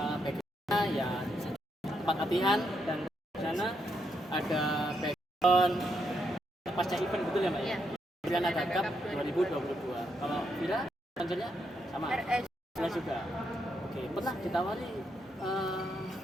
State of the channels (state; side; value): normal; both; correlation 0.79